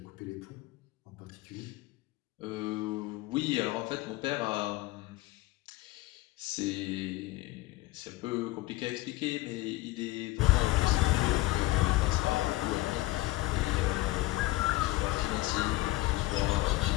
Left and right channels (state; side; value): quieter; right; 18.9 dB